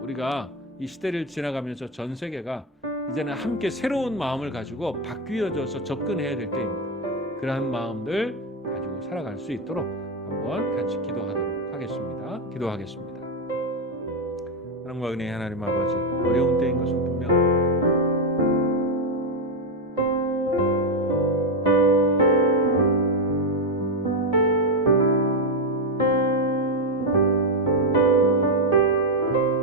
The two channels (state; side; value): normal; both; correlation 0.06